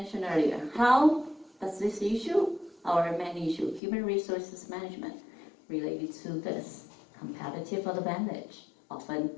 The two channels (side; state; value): right; drops out; at 3.8 s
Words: earlier, how does this issue, our main issue, human resources management, related to this competitive advantage of